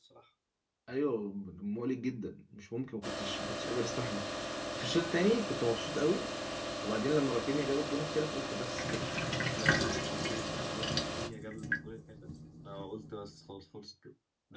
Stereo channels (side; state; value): both; identical; correlation 1.00